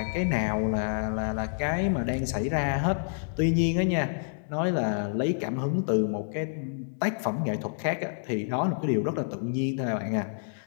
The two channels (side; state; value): right; silent; digital silence